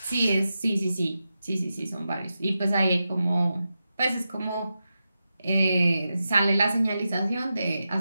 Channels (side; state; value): both; inverted; correlation -0.90